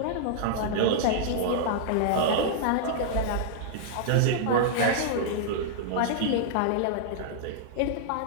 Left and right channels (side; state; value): both; different; correlation -0.02